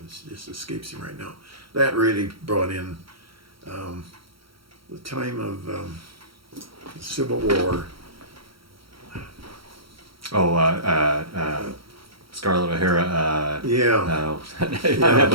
just escapes me right now. That really brought in the time of the Civil War. Oh, Scarlett O'Hara. Yeah, I'm Yeah.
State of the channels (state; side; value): late; left; 0.74 ms